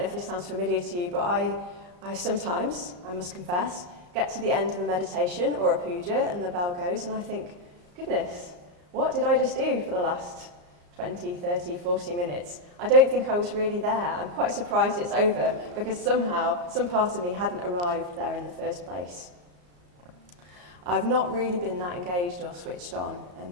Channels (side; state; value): left; late; 34 ms